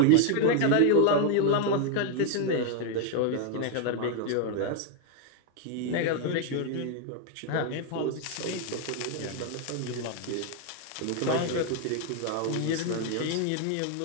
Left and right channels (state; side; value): different; both; correlation 0.01